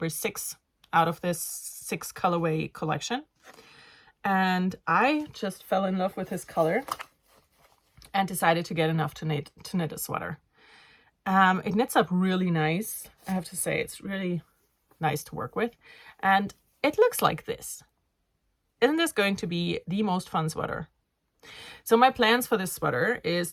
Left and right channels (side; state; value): both; identical; correlation 1.00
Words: 6 out of this 6 colorway collection. And I just fell in love with this color and decided to get enough to knit a sweater. It knits up really nice. I have to say, it's really nice to work with. And it looks like this. Isn't this going to be the most fun sweater? So my plans for this sweater is